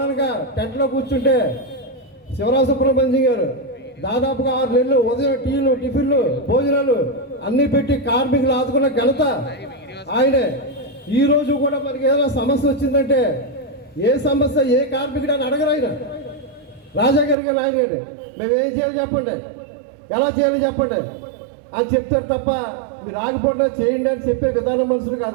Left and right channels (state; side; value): drops out; left; at 17.4 s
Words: టెంట్లో కూర్చుంటే శివరామ సుబ్రహ్మణ్యం గారు దాదాపుగా 6 నెలలు ఉదయం టీలు, టిఫిన్లు, భోజనాలు అన్నీ పెట్టి కార్మికులు ఆదుకున్న ఘనత ఆయనే. ఈ రోజు కూడా మనకి ఏదైనా సమస్య వచ్చిందంటే ఏ సమస్య ఏ కార్మికుడు అని అడగరు ఆయన. రాజా గారికి ఆయన గారు మేము ఏం చేయాలి చెప్పండి, ఎలా చేయాలి చెప్పండి అని చెప్తారు తప్ప మీరు ఆగిపోయినా చేయండి అని చెప్పే విధానం మనుషులు